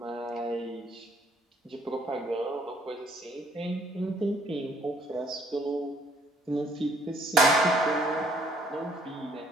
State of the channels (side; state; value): both; normal; correlation 0.63